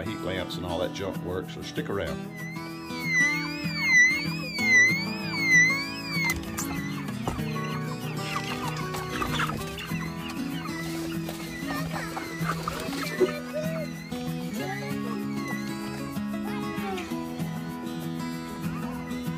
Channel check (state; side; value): identical; both; correlation 1.00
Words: heat lamps and all that junk work. So stick around.